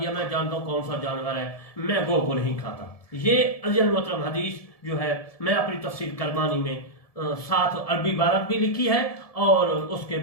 मैं जानता हूँ कौन सा जानवर है, मैं गो को नहीं खाता। ये अज़ीज़ मोहतरम हदीस जो है मैं अपनी तफसीर करमानी में साथ अरबी इबारत भी लिखी है और उसके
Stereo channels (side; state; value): right; late; 1.7 ms